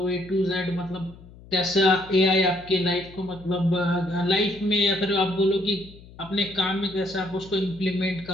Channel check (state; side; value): noise; left; hum, 21 dB below the sound